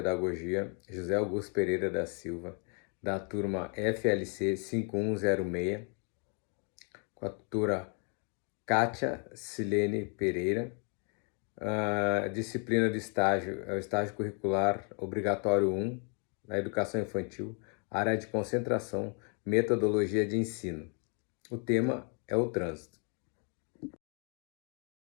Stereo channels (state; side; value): quieter; right; 38.7 dB